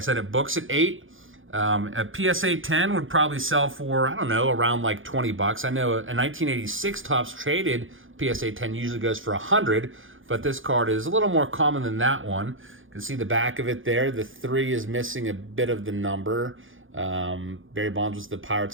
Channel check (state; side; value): late; left; 0.58 ms